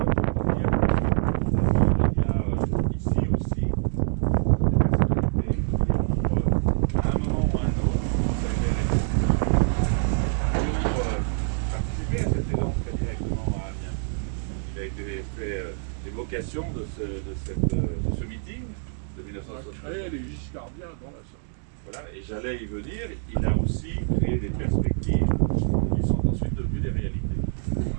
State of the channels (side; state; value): left; silent; 61 dB below the other